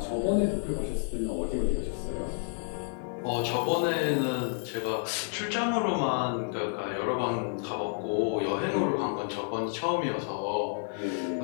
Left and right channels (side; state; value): right; silent; digital silence